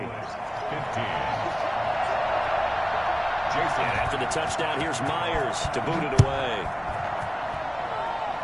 15. Jason. And after the touchdown, here's Myers to boot it away.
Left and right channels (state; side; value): identical; both; correlation 1.00